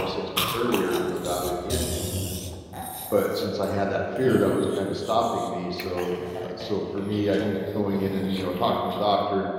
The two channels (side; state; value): both; identical; correlation 1.00